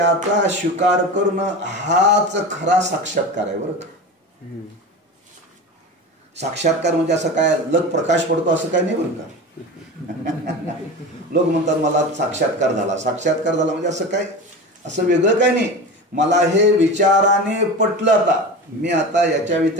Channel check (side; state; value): both; normal; correlation 0.29